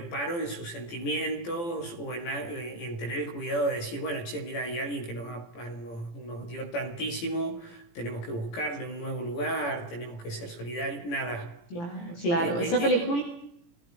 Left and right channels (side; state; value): right; late; 18 ms